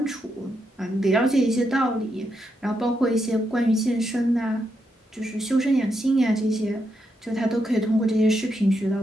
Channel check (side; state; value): both; normal; correlation 0.82